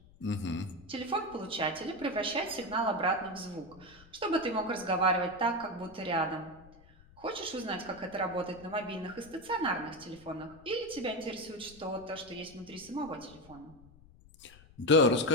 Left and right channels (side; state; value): left; noise; rumble, 24 dB below the sound